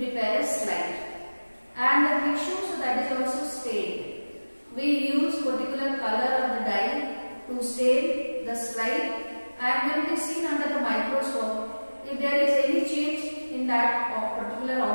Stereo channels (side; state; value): both; inverted; correlation -1.00